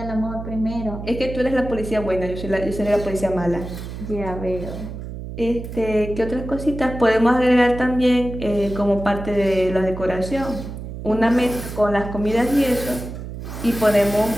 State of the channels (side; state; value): right; noise; hum, 9 dB below the sound